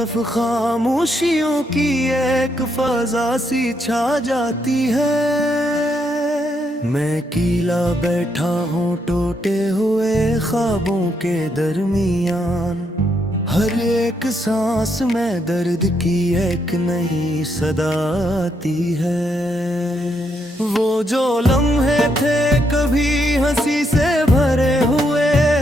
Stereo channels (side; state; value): both; normal; correlation 0.77